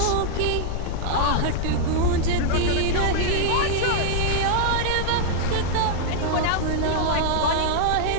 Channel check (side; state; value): both; different; correlation -0.02